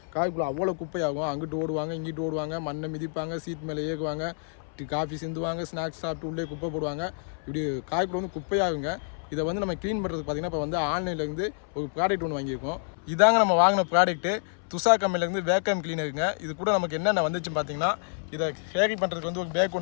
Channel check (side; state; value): right; silent; 59 dB below the other